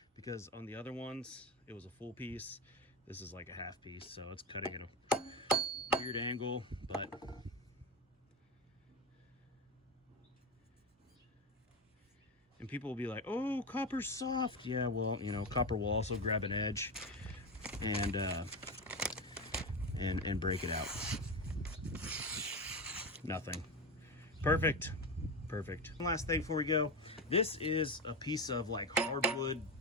because on the other ones it was a full piece. This is like a half piece, so it's cutting at a weird angle, but and people will be like, oh, copper's soft. Yeah, well, you know, copper will also grab an edge and break it out. Nothing. Perfect. Perfect. One last thing before we go. This is a piece of like hardwood,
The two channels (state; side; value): normal; both; correlation 0.19